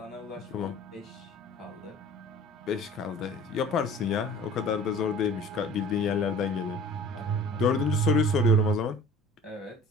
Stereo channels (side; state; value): both; normal; correlation 0.45